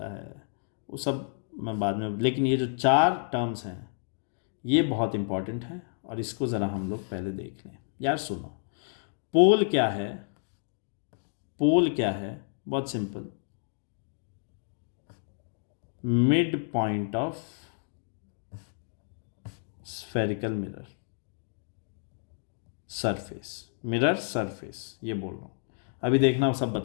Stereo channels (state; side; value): silent; right; digital silence